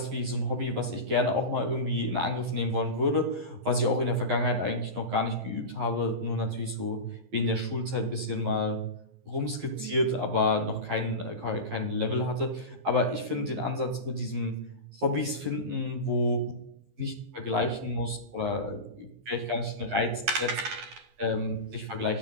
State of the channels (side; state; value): left; late; 11 ms